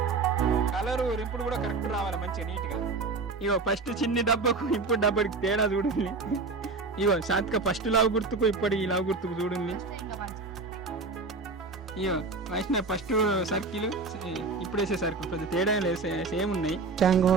కలరు రింపుడు కూడా కరెక్ట్ రావాలి మంచిగా నీట్ గా ఇగో ఫస్ట్ చిన్ని డబ్బాకు ఇప్పుడు డబ్బాకి తేడా చూడండి ఇగో శాంతిక ఫస్ట్ లావు గుర్తుకు ఇప్పటి ఈ లావు గుర్తుకు చూడండి ఇగో వైష్ణవ్ ఫస్ట్ సర్కిల్ ఇప్పుడు వేసే సర్కిల్ పెద్ద తేడా లేదు సేమ్ ఉన్నాయి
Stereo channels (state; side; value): quieter; left; 4.0 dB